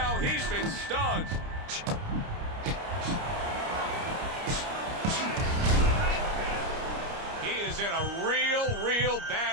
He's been stunned. He is in a real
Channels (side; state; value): left; late; 29 ms